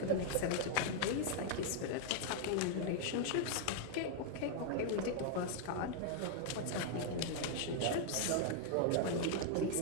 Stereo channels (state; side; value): different; both; correlation 0.00